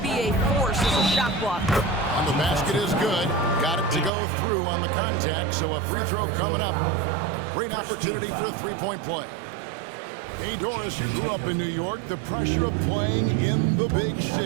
be a force as a shot blocker. And the basket is good. Got it to go through on the contact, so a free throw coming up. A great opportunity for a three-point play. Hey, Doris, you grew up in New York. The pressure of playing in the big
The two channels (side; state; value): left; drops out; at 4.1 s